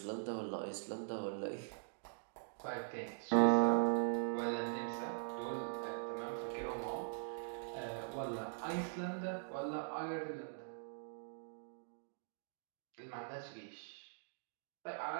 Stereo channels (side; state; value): left; silent; digital silence